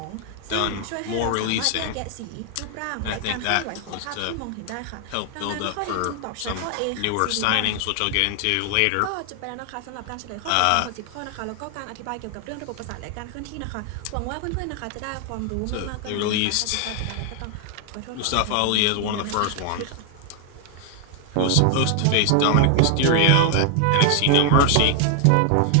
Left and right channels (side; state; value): both; different; correlation 0.00